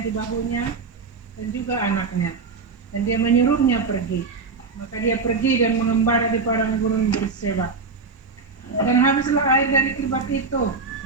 di bahunya, dan juga anaknya. Dan dia menyuruhnya pergi. Maka dia pergi dan mengembara di padang gurun Berseba. Dan habislah air dari kirbat itu,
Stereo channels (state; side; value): quieter; left; 4.5 dB